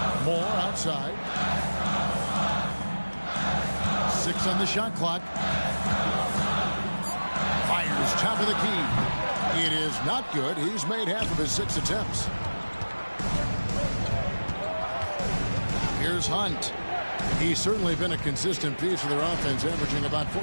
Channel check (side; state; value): both; inverted; correlation -1.00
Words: Moore outside. 6 on the shot clock. Fires top of the key. It is not good. He's made half of his 6 attempts. Here's Hunt. He's certainly been a consistent piece of their offense, averaging about